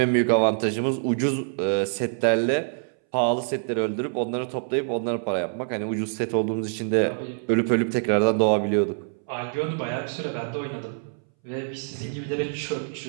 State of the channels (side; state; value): left; silent; 61 dB below the other